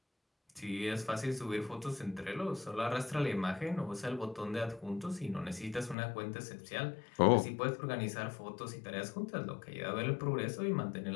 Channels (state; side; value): drops out; right; at 6.0 s